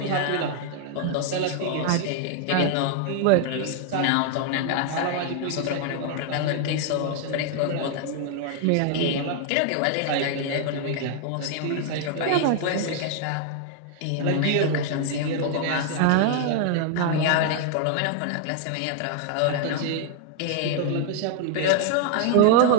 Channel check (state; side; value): different; both; correlation 0.00